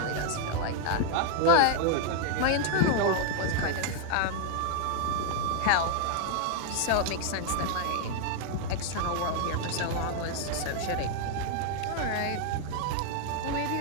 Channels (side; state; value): both; different; correlation 0.00